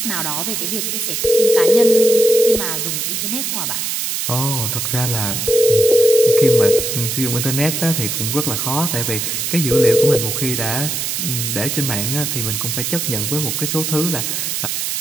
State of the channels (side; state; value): right; noise; hiss, 2 dB below the sound